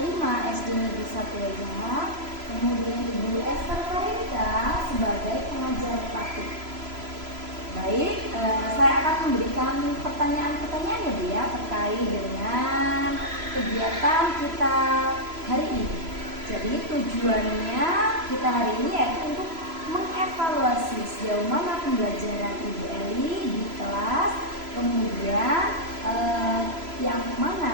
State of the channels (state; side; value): late; left; 3.0 ms